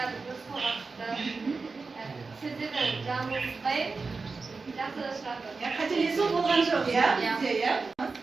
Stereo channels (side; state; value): left; quieter; 4.3 dB